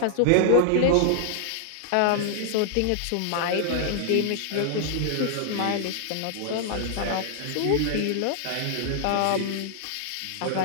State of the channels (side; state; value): both; different; correlation -0.01